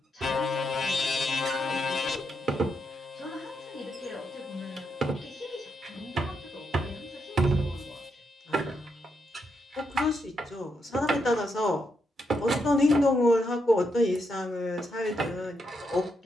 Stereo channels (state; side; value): normal; both; correlation 0.81